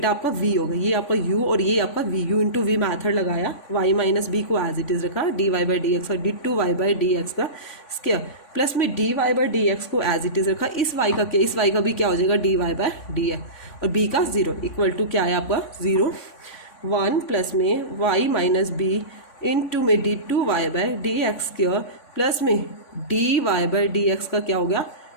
आपका v होगा, ये आपका u और ये आपका v, u into we method लगाया, y माइनस बी को एज इट इज़ रखा, dy बाई डी एक्स और d2y बाई डी एक्स का स्क्वायर प्लस में dy बाई डी एक्स को एज इट इज़ रखा, इस y का क्या, इस y का भी क्या हो जाएगा dy बाई डी एक्स और b का 0 इक्वल टू क्या है आपका 0, 1 प्लस में y माइनस बी इंटू में d2y by D x square plus में dy बाई डी एक्स का क्या हो गया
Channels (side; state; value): right; late; 3.5 ms